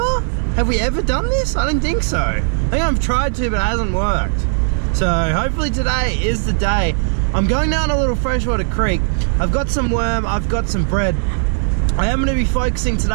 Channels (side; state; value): left; silent; digital silence